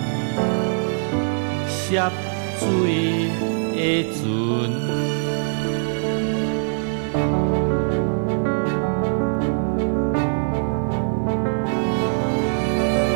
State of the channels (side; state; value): left; silent; 64 dB below the other